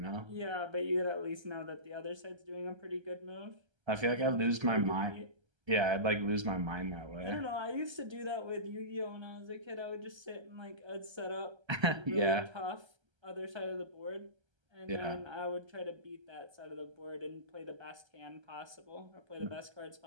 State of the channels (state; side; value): late; left; 1.3 ms